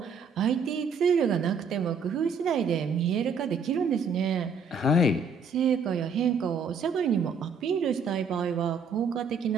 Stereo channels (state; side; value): quieter; left; 4.7 dB